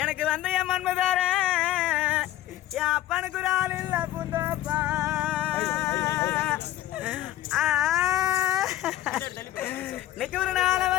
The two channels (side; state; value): right; quieter; 14.2 dB